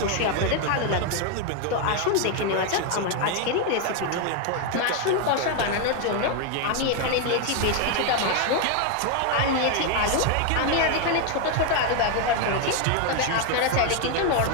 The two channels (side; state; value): both; different; correlation 0.01